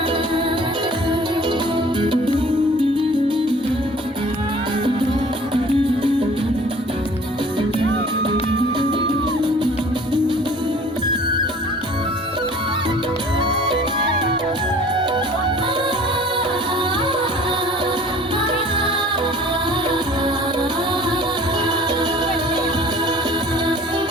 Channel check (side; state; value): both; normal; correlation 0.48